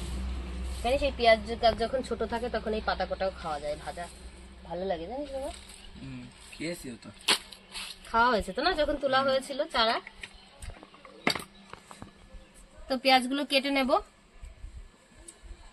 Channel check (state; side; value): identical; both; correlation 1.00